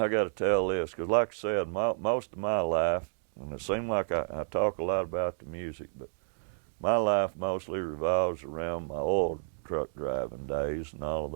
got to tell this, because like I said, most of my life, and it seemed like I talk a lot about the music, but my life mostly revolves around my oil truck driving days and all of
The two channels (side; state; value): left; silent; digital silence